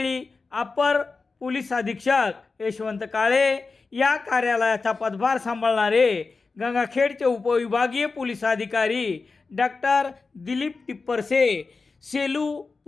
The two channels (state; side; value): quieter; right; 4.2 dB